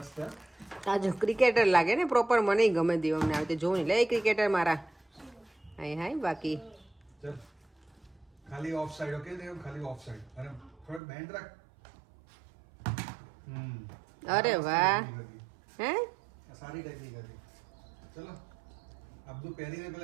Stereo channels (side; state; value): left; drops out; at 11.0 s